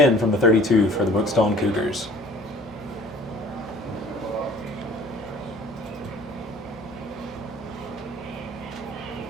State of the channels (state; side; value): normal; both; correlation 0.49